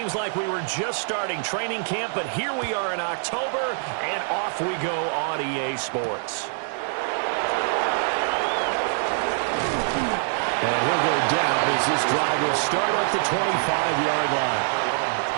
like we were just starting training camp, but here we are in October, and off we go on EA Sports. And he'll go down as this drive will start at the 25-yard line.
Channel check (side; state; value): left; silent; digital silence